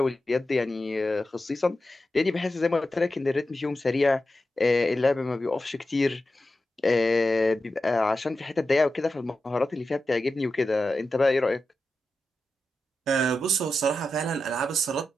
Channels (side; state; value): both; normal; correlation 0.91